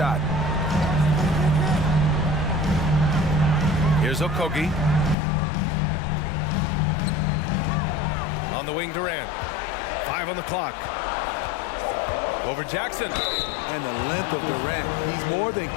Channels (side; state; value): right; drops out; at 5.2 s